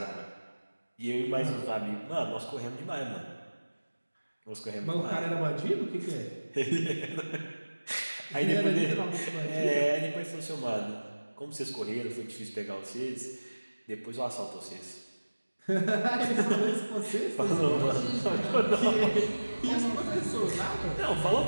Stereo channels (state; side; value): inverted; both; correlation -1.00